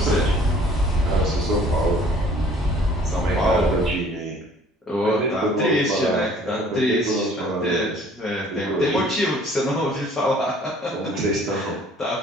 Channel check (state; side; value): normal; both; correlation 0.54